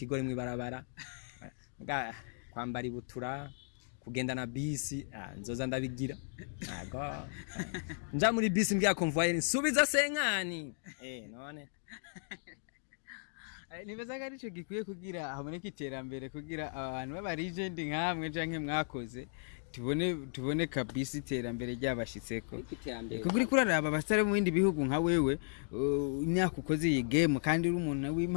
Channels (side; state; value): right; silent; digital silence